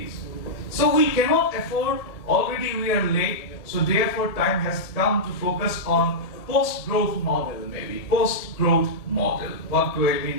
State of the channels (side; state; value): right; late; 1.7 ms